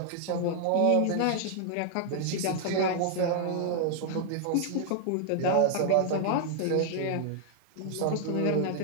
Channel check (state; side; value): different; both; correlation -0.01